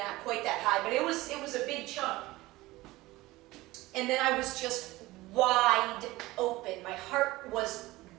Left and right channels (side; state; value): left; quieter; 19.1 dB